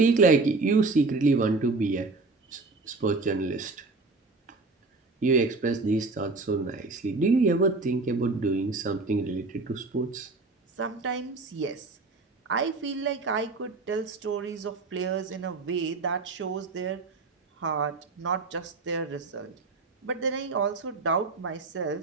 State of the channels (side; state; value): left; quieter; 3.7 dB